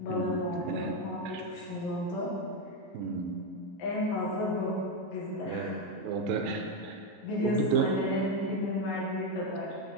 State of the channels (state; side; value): normal; both; correlation 0.08